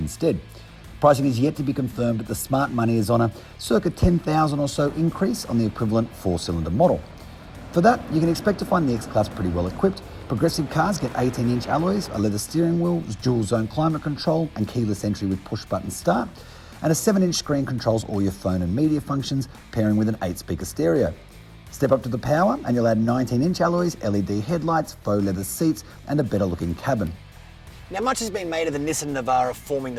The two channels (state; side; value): identical; both; correlation 1.00